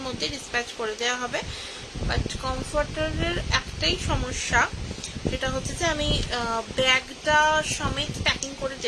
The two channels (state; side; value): identical; both; correlation 1.00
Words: মধ্যে ডিসপ্যাচ করে দেওয়া হবে। বাট কমফর্টারের একটাই সমস্যা, সেটা হচ্ছে যে আমি ব্যাগটা সমেত প্যাকিং করে